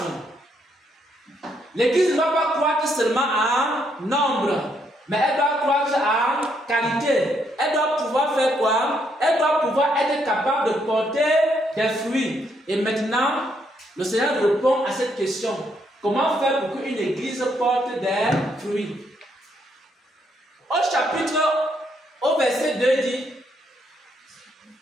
L'église ne doit pas croître seulement en nombre, mais elle doit croître en qualité. Elle doit pouvoir faire quoi? Elle doit pouvoir être capable de porter des fruits. Et maintenant, le Seigneur répond à cette question. Comment faire pour qu'une église porte des fruits? Au verset 2 dit,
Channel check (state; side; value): normal; both; correlation 0.74